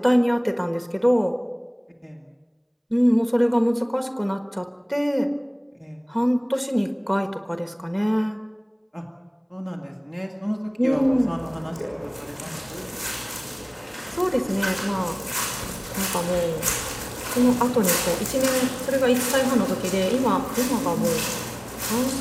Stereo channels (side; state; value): both; identical; correlation 1.00